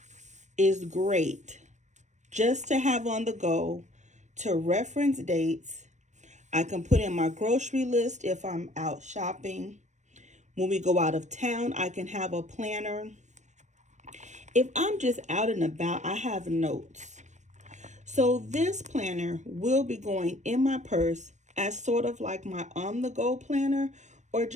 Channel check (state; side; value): late; left; 0.34 ms